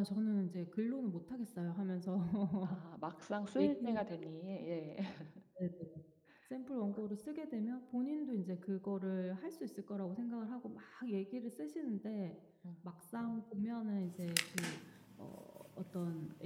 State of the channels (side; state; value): both; identical; correlation 1.00